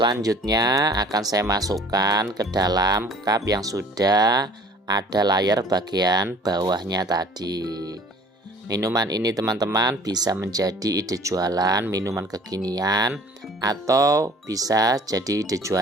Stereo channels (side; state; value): both; normal; correlation 0.50